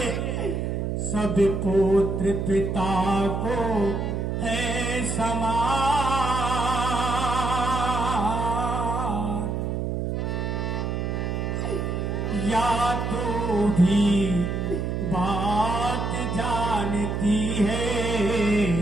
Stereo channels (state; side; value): noise; right; hum, 1 dB below the sound